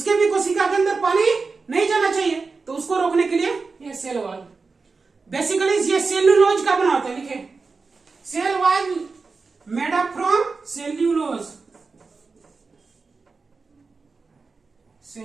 भी कोशिका के अंदर पानी नहीं जाना चाहिए। तो उसको रोकने के लिए ये सेल वॉल। बेसिकली ये सेल्यूलोज का बना होता है। लिखे, cell wall made up from cellulose.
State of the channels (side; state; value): left; quieter; 4.3 dB